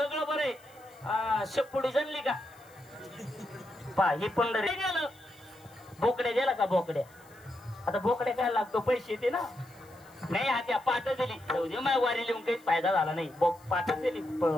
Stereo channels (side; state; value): left; noise; hiss, 27 dB below the sound